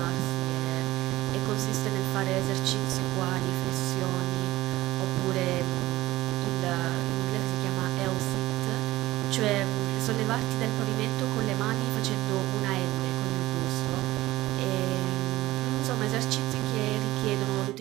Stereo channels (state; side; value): quieter; left; 17.2 dB